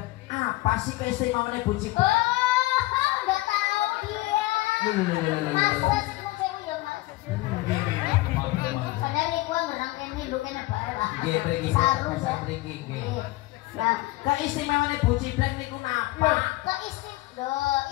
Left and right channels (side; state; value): right; quieter; 19.5 dB